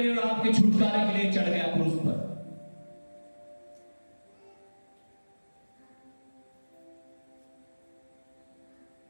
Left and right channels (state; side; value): inverted; both; correlation -1.00